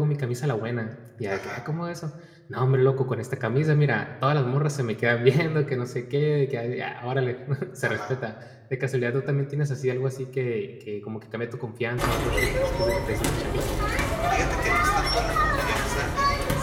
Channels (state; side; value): identical; both; correlation 1.00